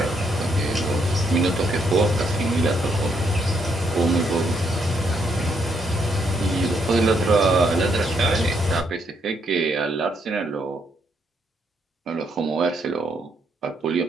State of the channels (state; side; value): normal; both; correlation 0.75